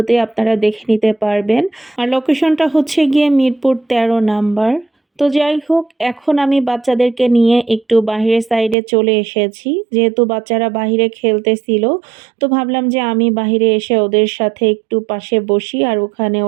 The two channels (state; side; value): drops out; left; at 8.8 s